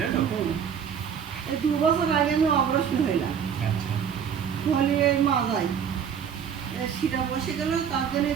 তো? এই 2 বছর আগে আমি অপারেশন হইলাম। আচ্ছা। হলি এই মাজায় শিরা বসে গেল, তার জন্য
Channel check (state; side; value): quieter; left; 7.8 dB